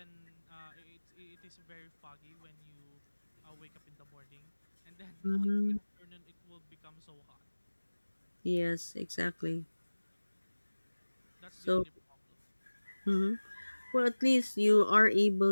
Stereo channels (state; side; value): inverted; both; correlation -1.00